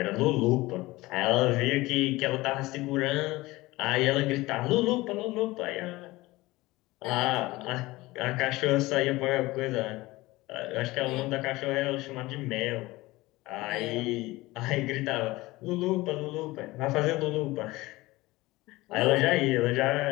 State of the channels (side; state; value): right; quieter; 19.8 dB